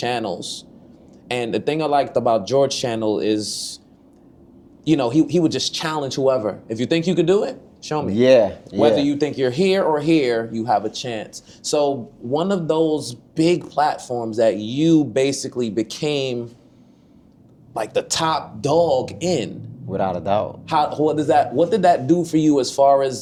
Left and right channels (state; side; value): identical; both; correlation 1.00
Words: and the thing I liked about George's channel is, you know, he would just challenge whoever. If you think you could do it, show me. Yeah. Whether you think you're here or here, you have a chance. So one of those big platforms that you basically became like the top dog in. Without a doubt. What did that do for you as far